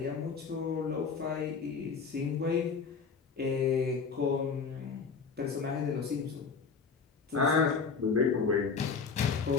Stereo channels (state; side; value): quieter; right; 5.3 dB